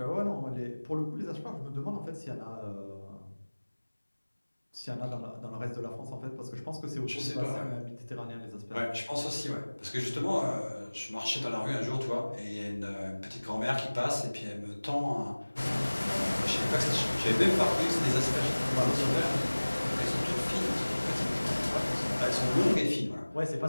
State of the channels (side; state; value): both; inverted; correlation -1.00